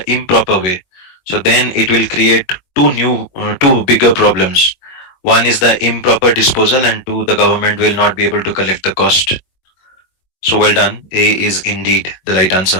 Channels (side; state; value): right; late; 22 ms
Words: improper way? So then it will create two bigger problems. One is the improper disposal, and two, the government will not be able to collect the cost. So well done. A is indeed the right